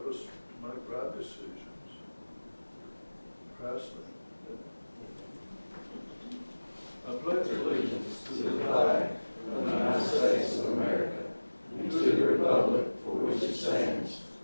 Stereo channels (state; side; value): inverted; both; correlation -1.00